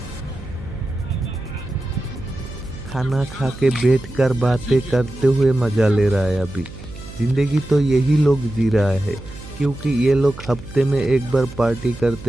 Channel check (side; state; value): right; noise; hum, 15 dB below the sound